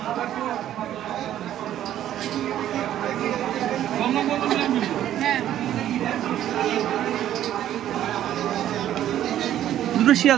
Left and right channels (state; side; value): quieter; left; 11.8 dB